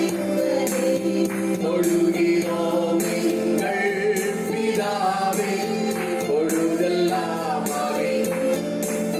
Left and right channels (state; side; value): identical; both; correlation 1.00